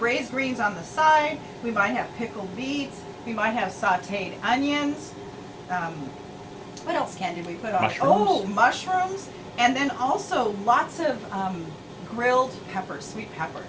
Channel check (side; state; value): both; identical; correlation 1.00